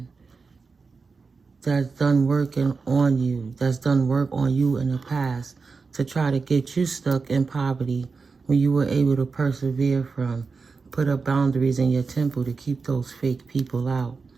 that's done working on you, that's done work on you in the past to try to get you stuck in poverty when you were able to persevere from. Put up boundaries in your temple to keep those fake people out.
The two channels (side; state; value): left; quieter; 4.6 dB